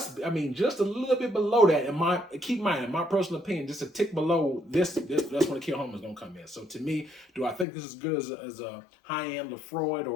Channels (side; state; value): right; drops out; at 7.7 s